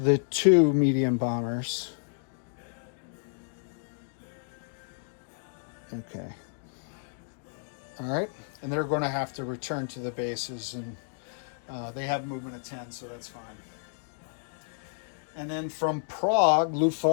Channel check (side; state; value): right; silent; digital silence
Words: 2 medium bombers. Okay. All right, and they're going to have to return to the bases, and they have movement of 10, so that's fine. And then from Prague,